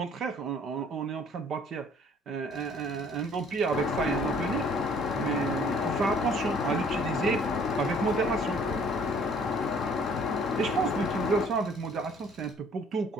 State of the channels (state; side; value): normal; both; correlation 0.57